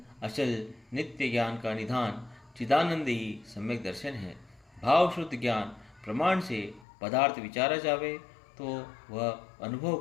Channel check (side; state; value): right; drops out; at 6.9 s